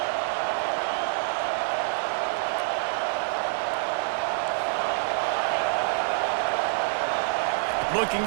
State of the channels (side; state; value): left; silent; digital silence